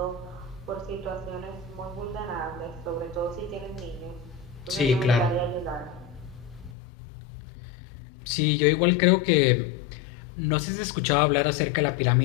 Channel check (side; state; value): right; drops out; at 6.8 s